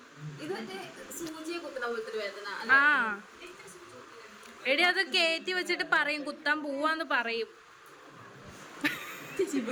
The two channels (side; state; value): both; identical; correlation 1.00